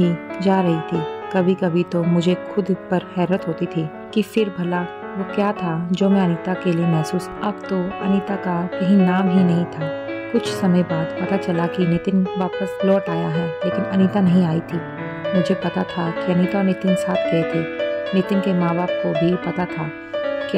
जा रही थी। कभी कभी तो मुझे खुद पर हैरत होती थी कि फिर भला वो क्या था जो मैं अनीता के लिए महसूस। अब तो अनीता का कहीं नाम ही नहीं था। कुछ समय बाद पता चला कि नितिन वापस लौट आया है, लेकिन अनीता नहीं आई थी। मुझे पता था कि अनीता और नितिन साथ गए थे। नितिन के माँ बाप को भी पता था कि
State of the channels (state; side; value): identical; both; correlation 1.00